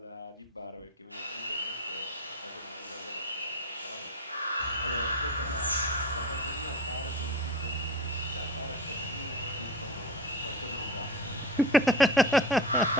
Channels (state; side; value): normal; both; correlation 0.27